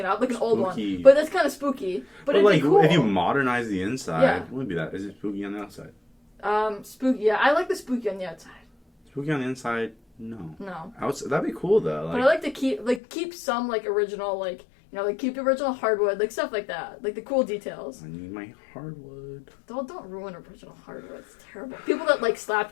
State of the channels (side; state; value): right; drops out; at 13.0 s